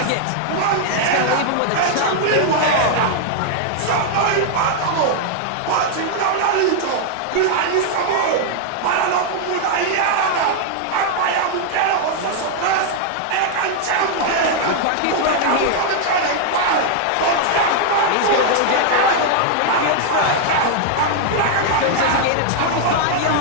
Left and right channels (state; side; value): different; both; correlation 0.00